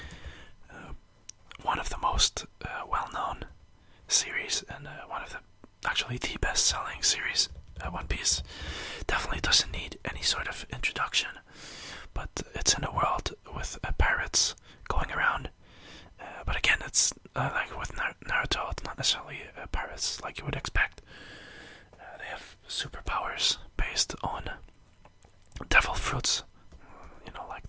One of the most well-known series, and one of actually the best-selling series. One Piece definitely doesn't need any sort of introduction, but it's in a world with pirates going around. But again, it's like with Naruto, it's not necessarily pirates like you would expect. They have superpowers based on devil fruits. Like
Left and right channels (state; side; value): identical; both; correlation 1.00